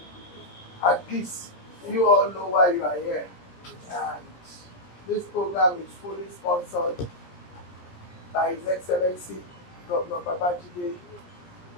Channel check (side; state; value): right; late; 17 ms